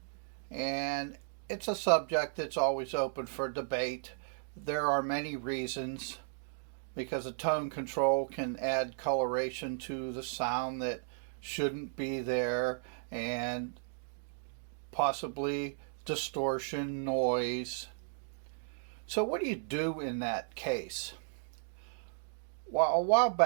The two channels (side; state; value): left; silent; digital silence